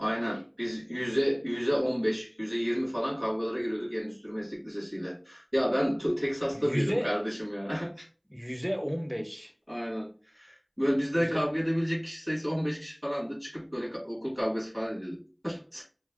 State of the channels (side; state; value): both; identical; correlation 1.00